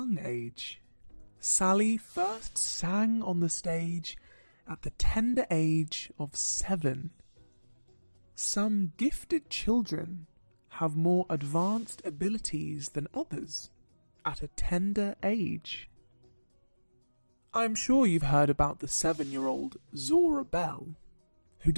age. Sally first sang on the stage at the tender age of 7. Some gifted children have more advanced abilities than others at a tender age. I'm sure you've heard about the 7-year-old Zora Bell, who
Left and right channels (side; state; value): both; inverted; correlation -1.00